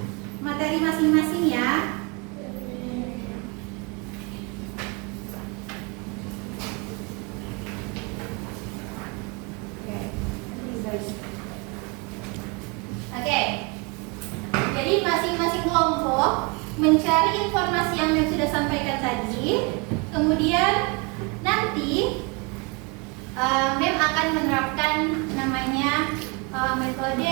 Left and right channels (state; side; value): quieter; left; 30.3 dB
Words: Materi masing-masing ya. Oke. Jadi masing-masing kelompok mencari informasi yang Mem sudah sampaikan tadi. Kemudian nanti Mem akan menerapkan namanya